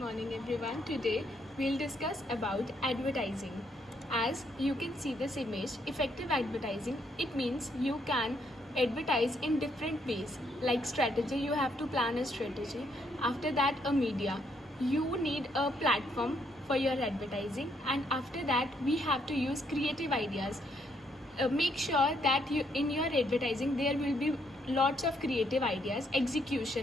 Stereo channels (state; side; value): normal; both; correlation 0.72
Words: everyone. Today we'll discuss about advertising. As you can see this image, effective advertising, it means you can advertise in different ways. Like strategy, you have to plan a strategy. After that, a media. You need a platform for your advertising, and after that we have to use creative ideas. Make sure that you in your advertising there will be lots of creative ideas.